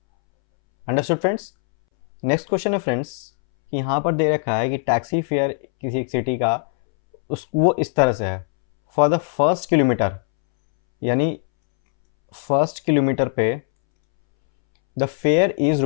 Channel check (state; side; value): silent; right; 65 dB below the other